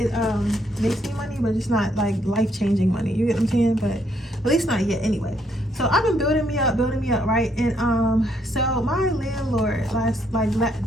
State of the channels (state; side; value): normal; both; correlation 0.72